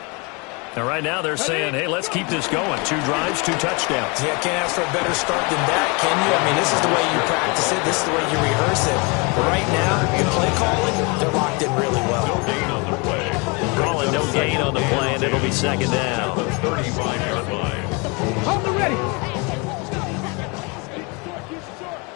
And right now they're saying, hey, let's keep this going. 2 drives, 2 touchdowns. Yeah, can't ask for a better start than that, can you? I mean, this is the way you practice it. This is the way you rehearse it. But right now, the play calling, they're locked in really well. No gain on the play. Calling no gain on the play, and it'll be second down. 35-yard line. Hold the ready.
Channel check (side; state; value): right; quieter; 30.0 dB